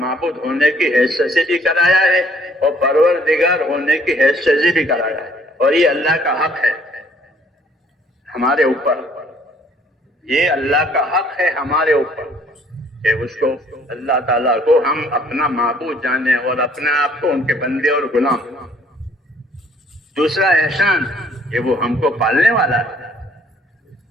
ہونے کی حیثیت سے بھی کرایا ہے اور پروردگار ہونے کی حیثیت سے بھی کرایا ہے. اور یہ اللہ کا حق ہے ہمارے اوپر. یہ اللہ کا حق ہے ہمارے اوپر کہ اس کو اللہ تعالیٰ کو ہم اپنا معبود جانیں اور اپنے آپ کو ان کے بندے اور غلام. دوسرا احسان کہ وہ ہم کو پالنے والا ہے.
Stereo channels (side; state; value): both; normal; correlation 0.61